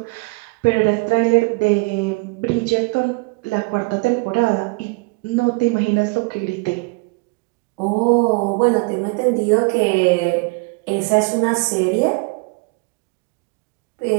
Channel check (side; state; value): left; quieter; 28.9 dB